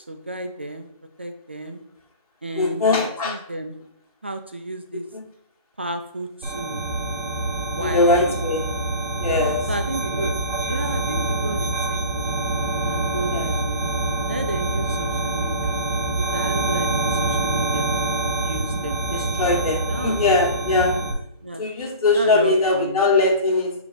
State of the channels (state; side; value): inverted; both; correlation -0.35